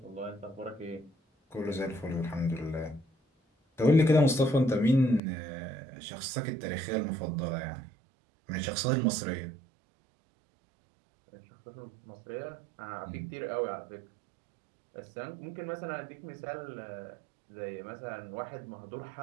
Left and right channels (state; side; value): drops out; left; at 5.2 s